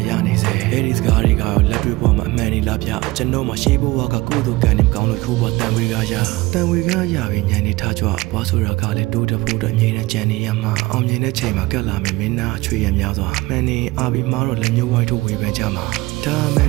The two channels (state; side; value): quieter; left; 20.7 dB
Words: ရနေစေအဲ့ဒီစကားတွေကလက်တွေ့ပေါ်မှာအမှန်နေလားဗျကျွန်တော်မှရှေးဘဝကကုသိုလ်ကံနေကောင်းလို့ခိုးပေါ်တန်ဝေကရတန်ဝေကရပြီးညံနေထားကြွားဘွားဆိုတာကလည်းတိုးတဖို့တော့အမြဲတမ်းကြံနေရမှာအောင်မြင်တဲ့ချိန်မှာကက်လာမယ်မင်းသားအချွေရများစွာမှန်နေအာပြီးမားတော့လက်ညှိုးဝိုင်းထုတ်ဝေဖန်ကြမှာဒါမှန်